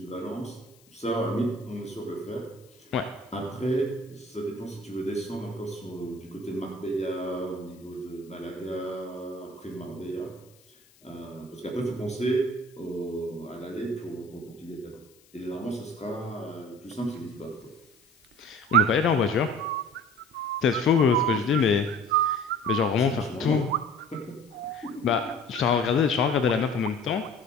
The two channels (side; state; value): left; noise; hiss, 29 dB below the sound